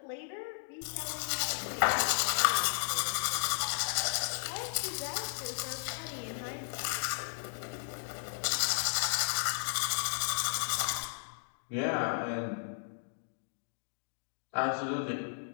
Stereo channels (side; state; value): right; silent; digital silence